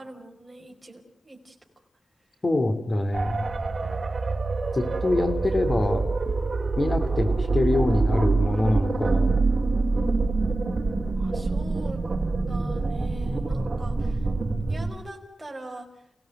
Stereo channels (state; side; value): normal; both; correlation 0.94